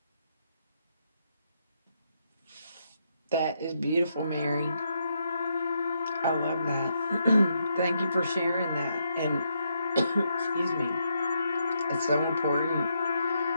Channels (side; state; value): both; inverted; correlation -0.78